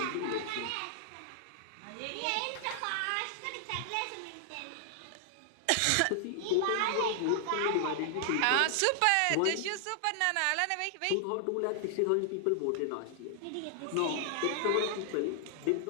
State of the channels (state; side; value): different; both; correlation 0.00